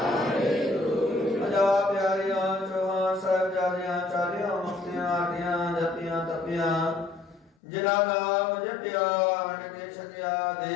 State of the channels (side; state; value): right; drops out; at 7.5 s